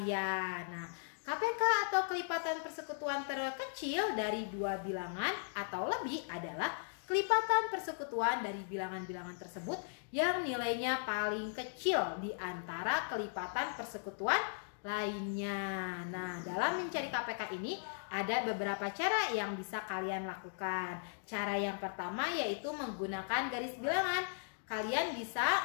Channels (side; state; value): right; silent; digital silence